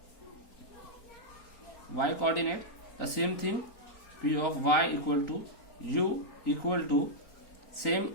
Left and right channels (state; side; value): late; right; 4.3 ms